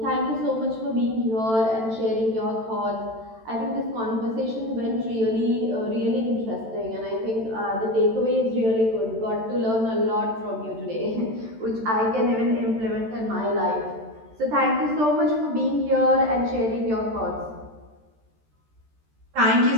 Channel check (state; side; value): late; left; 13 ms